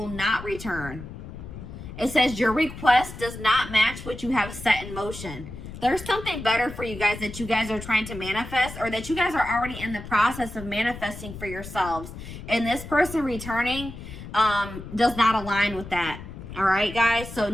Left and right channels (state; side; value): noise; left; rumble, 12 dB below the sound